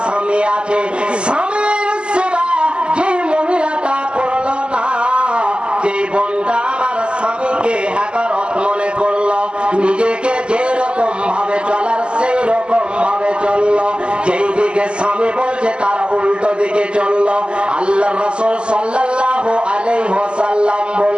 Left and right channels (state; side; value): late; left; 0.052 ms